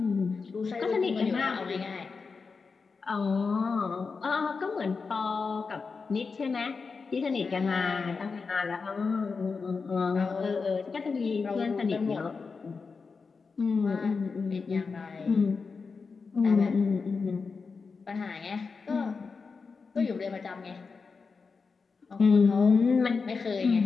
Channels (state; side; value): quieter; right; 4.8 dB